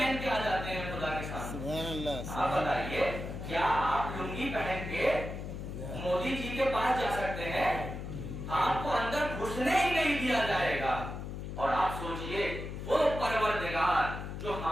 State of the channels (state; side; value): noise; left; hum, 7 dB below the sound